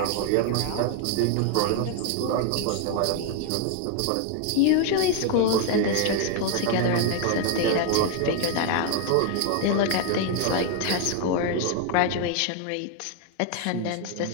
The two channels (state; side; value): different; both; correlation 0.00